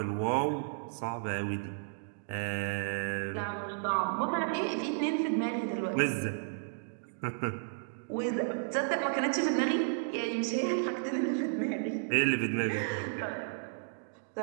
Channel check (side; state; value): left; silent; digital silence